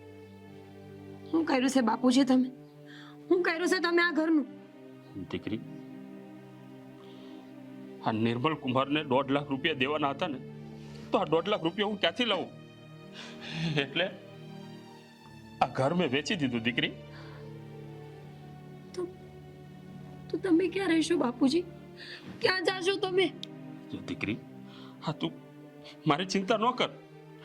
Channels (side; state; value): both; identical; correlation 1.00